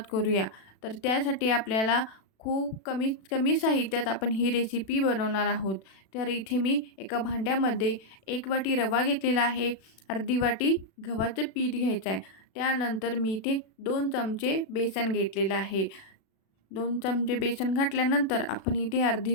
करूया. तर त्यासाठी आपल्याला खूप कमीत कमी साहित्यात आपण ही रेसिपी बनवणार आहोत. तर इथे मी एका भांड्यामध्ये 1 वाटी रवा घेतलेला आहे. अर्धी वाटी गव्हाचं पीठ घ्यायचं आहे. त्यानंतर मी इथे 2 चमचे बेसन घेतलेलं आहे. 2 चमचे बेसन घातल्यानंतर आपण इथे अर्धी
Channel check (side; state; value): right; late; 36 ms